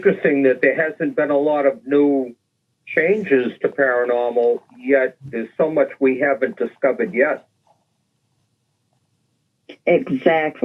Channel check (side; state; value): both; identical; correlation 1.00